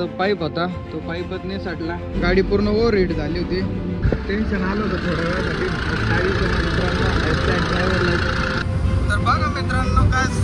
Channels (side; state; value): both; identical; correlation 1.00